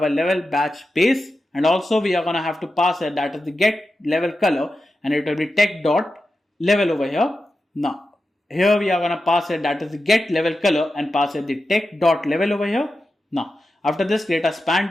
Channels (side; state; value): both; normal; correlation 0.91